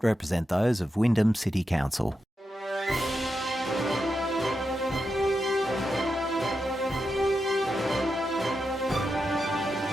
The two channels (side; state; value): both; normal; correlation 0.87